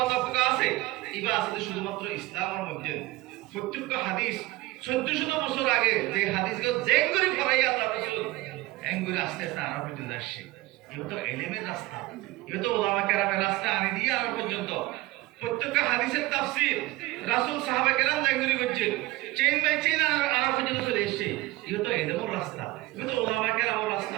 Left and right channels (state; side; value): quieter; left; 19.1 dB